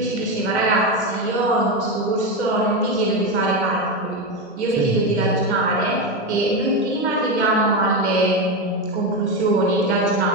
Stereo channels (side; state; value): both; normal; correlation 0.13